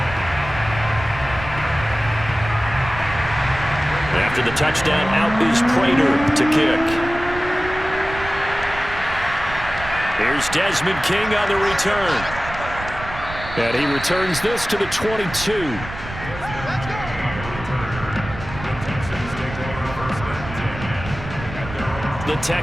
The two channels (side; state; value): right; noise; rumble, 11 dB below the sound